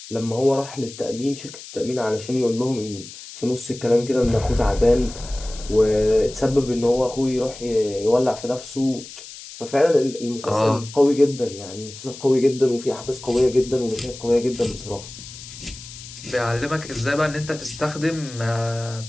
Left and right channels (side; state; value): left; noise; hiss, 15 dB below the sound